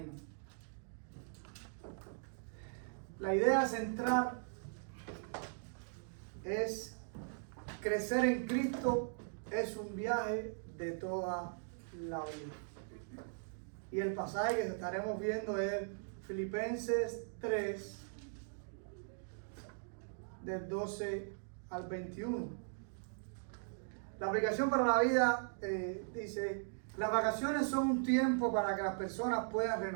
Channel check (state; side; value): silent; left; digital silence